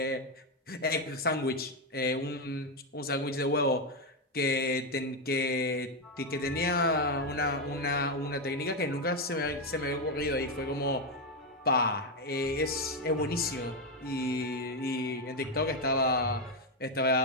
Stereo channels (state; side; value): normal; both; correlation 0.06